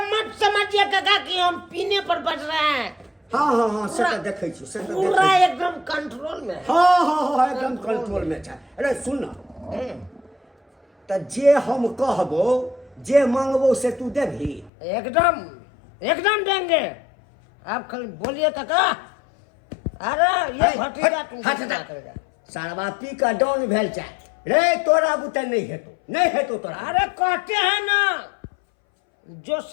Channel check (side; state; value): right; drops out; at 14.7 s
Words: मत समझिए काका कि हम पीने पर बच रहे हैं। हाँ हाँ हाँ से तो देखे छी, से तो पूरा देखे एकदम कंट्रोल में है। हाँ हाँ हाँ एकदम कंट्रोल में छै। अरे सुन ना, तो जे हम कहबो जे मांगबो से तू देभी? एकदम एकदम देंगे, आप खाली बोलिए काका। अरे ये भतीजा तुमको क्या करेगा? सारवा पी का डाउन भेल छै रे, तोरा बुते नहीं हेतो, नहीं हेतो तोरा। अरे कहते हैं ना, जो